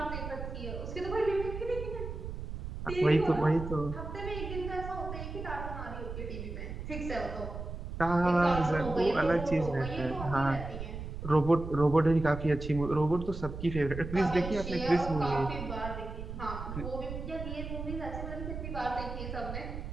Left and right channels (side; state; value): right; noise; rumble, 7 dB below the sound